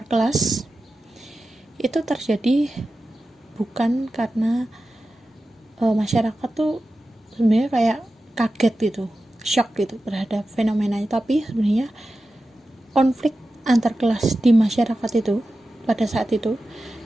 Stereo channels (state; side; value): normal; both; correlation 0.93